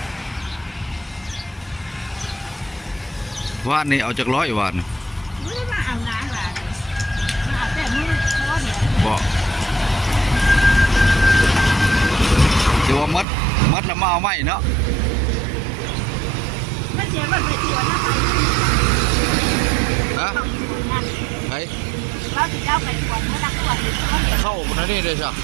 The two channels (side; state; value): left; drops out; at 13.2 s